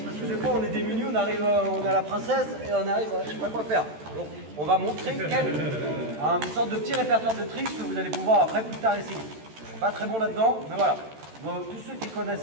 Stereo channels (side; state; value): left; late; 13 ms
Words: parce que des fois on est démunis, on a la princesse et on arrive à je sais pas quoi faire. Donc on va montrer une sorte de petit répertoire de tricks que vous allez pouvoir après plus tard essayer. Je suis pas très bon là-dedans, mais voilà. Donc, tous ceux qui